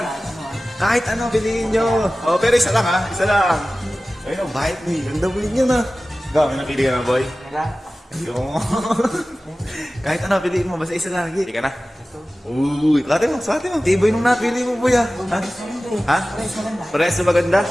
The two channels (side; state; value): both; normal; correlation 0.96